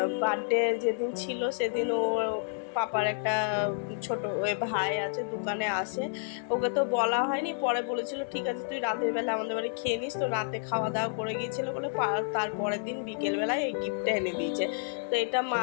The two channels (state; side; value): silent; right; 58 dB below the other